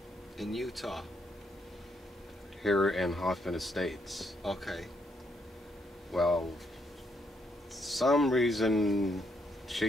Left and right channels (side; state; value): both; normal; correlation 0.75